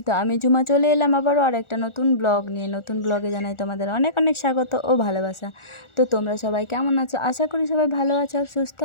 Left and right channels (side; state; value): right; late; 1.4 ms